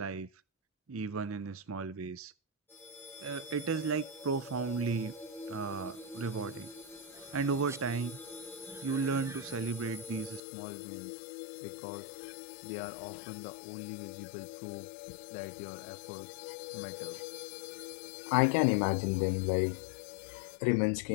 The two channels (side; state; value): right; drops out; at 10.4 s